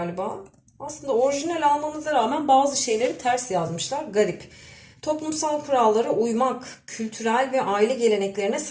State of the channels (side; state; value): both; identical; correlation 1.00